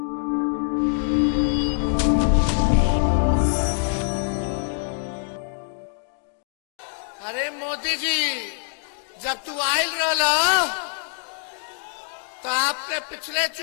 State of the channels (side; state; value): right; silent; digital silence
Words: अरे मोदी जी, जब तू आयल रहा तो आपने पिछले